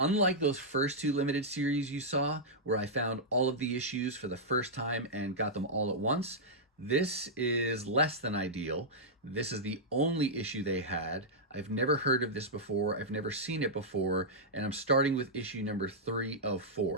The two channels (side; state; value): both; normal; correlation -0.09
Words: Unlike those first two limited series you saw, where I found all of the issues for the first time and got them all at once, this is less than ideal. This is the only issue they had. I've never heard of this before. I've never seen it before, and I'm starting with issue number 3 of